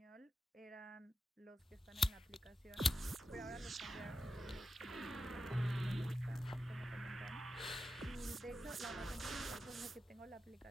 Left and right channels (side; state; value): both; normal; correlation 0.90